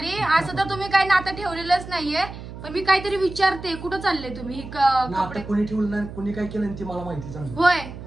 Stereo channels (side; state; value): right; noise; hum, 12 dB below the sound